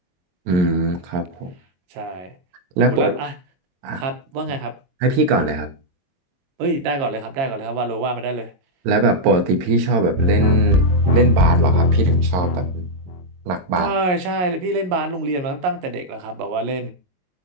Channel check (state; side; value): late; left; 22 ms